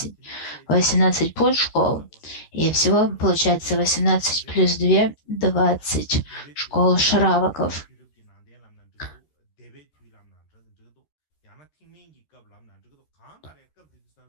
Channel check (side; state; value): right; late; 13 ms